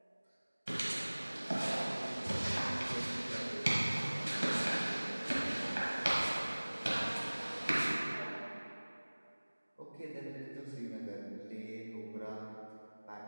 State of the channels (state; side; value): inverted; both; correlation -1.00